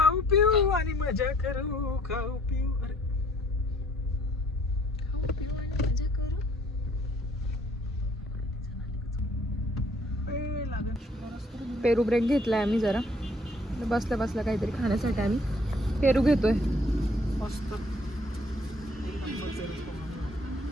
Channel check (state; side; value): normal; both; correlation 0.61